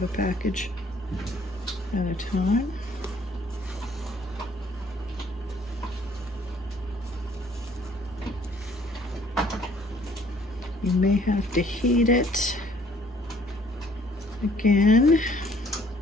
a package at a time. You may have to heat it again.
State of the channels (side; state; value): both; normal; correlation 0.60